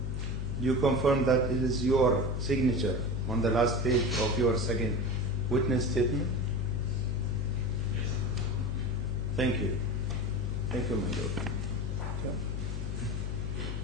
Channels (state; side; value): noise; left; hum, 4 dB below the sound